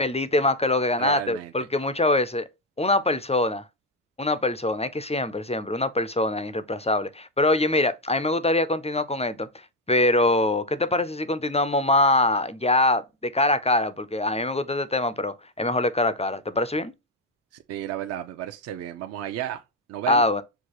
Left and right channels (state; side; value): normal; both; correlation 0.05